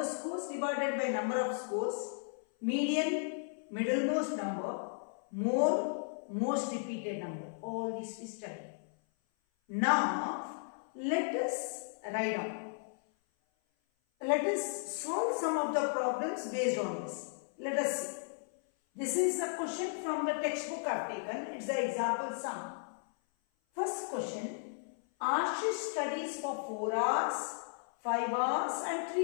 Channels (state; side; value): silent; right; 54 dB below the other